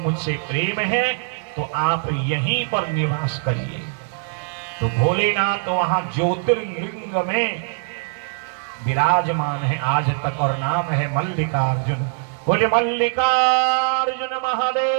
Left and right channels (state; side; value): silent; left; 64 dB below the other